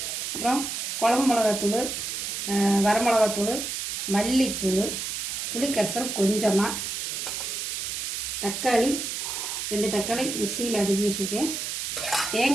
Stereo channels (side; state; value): right; noise; hiss, 3 dB below the sound